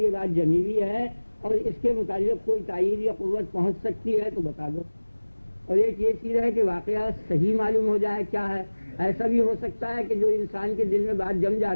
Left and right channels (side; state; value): both; inverted; correlation -1.00